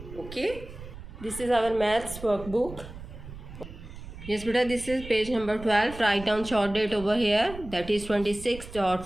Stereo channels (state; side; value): noise; right; rumble, 14 dB below the sound